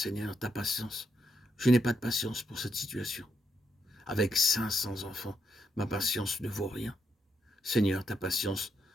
ta patience. Je n'ai pas de patience pour cette situation. Avec 500 enfants, ma patience ne vaut rien. Seigneur, ta patience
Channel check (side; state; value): both; normal; correlation 0.79